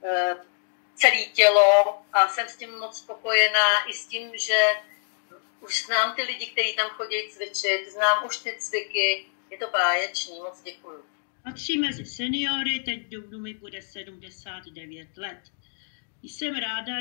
celé tělo a jsem s tím moc spokojená i s tím, že už znám ty lidi, kteří tam chodí cvičit, znám už ty cviky, je to báječný, moc děkuju. Patří mezi seniory, teď v dubnu mi bude 79 let. Jsem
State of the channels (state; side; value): silent; right; digital silence